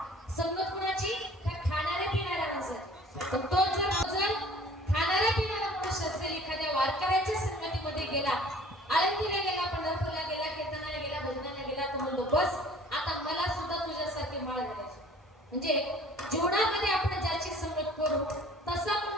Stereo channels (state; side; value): normal; both; correlation 0.50